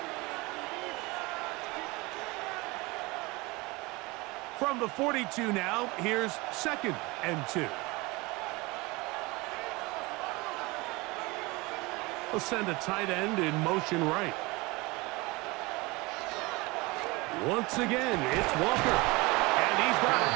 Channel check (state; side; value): quieter; left; 23.9 dB